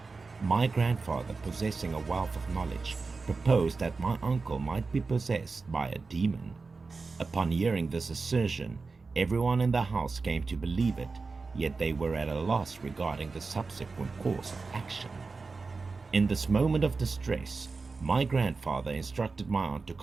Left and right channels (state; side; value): quieter; left; 4.2 dB